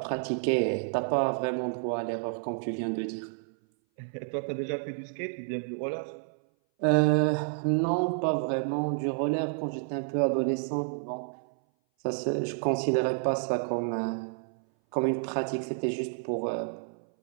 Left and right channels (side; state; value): left; silent; 57 dB below the other